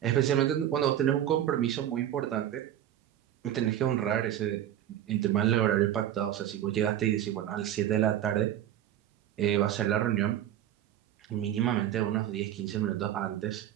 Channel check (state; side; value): quieter; left; 11.5 dB